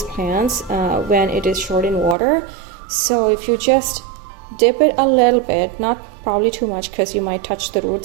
plants when it is short in water. So if you just dip it a little bit, not probably too much, because you might touch the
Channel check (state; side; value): drops out; left; at 2.1 s